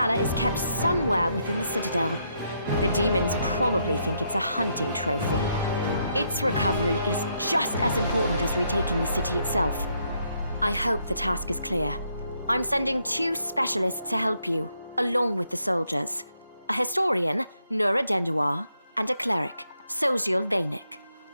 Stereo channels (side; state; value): both; inverted; correlation -0.76